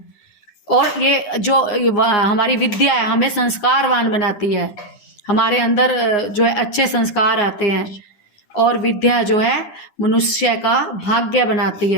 और ये जो हमारी विद्या है हमें संस्कारवान बनाती है, हमारे अंदर जो है अच्छे संस्कार आते हैं। और विद्या जो है मनुष्य का भाग्य बनाती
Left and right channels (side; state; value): right; late; 10 ms